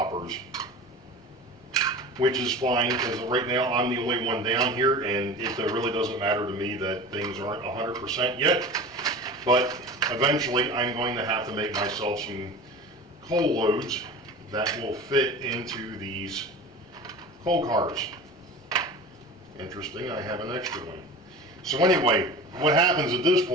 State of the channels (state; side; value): normal; both; correlation 0.35